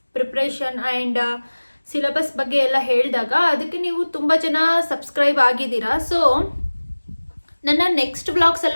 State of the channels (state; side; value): inverted; both; correlation -1.00